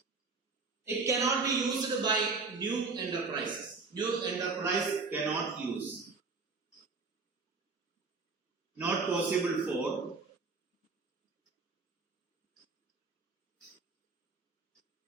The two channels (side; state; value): left; quieter; 4.2 dB